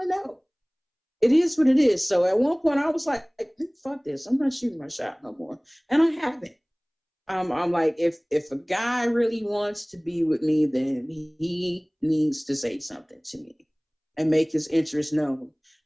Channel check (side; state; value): both; identical; correlation 1.00